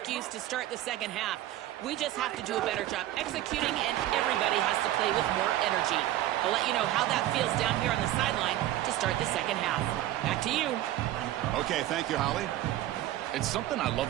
to start the second half. We just have to do a better job executing, and everybody has to play with more energy. I'll let you know how that feels down here on the sideline to start the second half. Back to you. Okay, thank you, Holly. It's something I love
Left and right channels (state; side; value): quieter; left; 14.2 dB